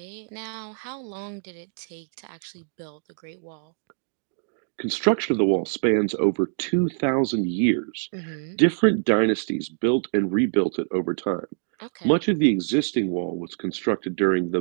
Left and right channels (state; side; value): silent; left; digital silence